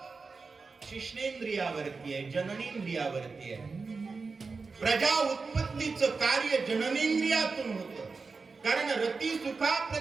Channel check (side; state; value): left; quieter; 4.4 dB